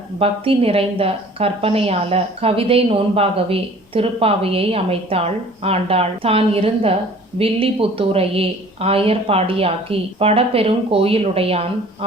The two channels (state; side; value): normal; both; correlation 0.49